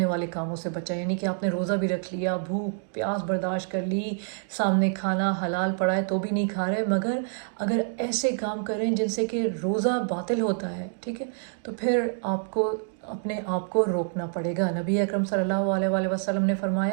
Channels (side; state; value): left; silent; digital silence